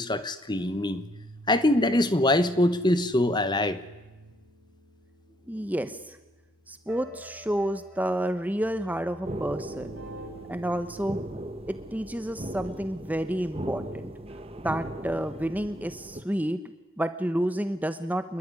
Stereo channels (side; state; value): both; normal; correlation 0.74